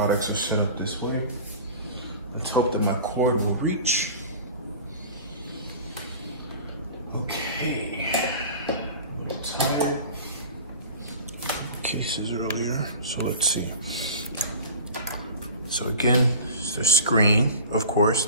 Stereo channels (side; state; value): both; inverted; correlation -0.39